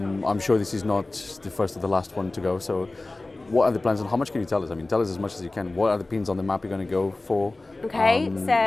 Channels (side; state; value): right; quieter; 3.0 dB